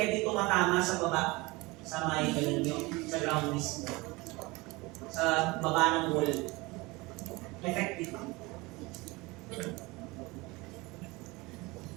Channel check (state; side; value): quieter; left; 23.4 dB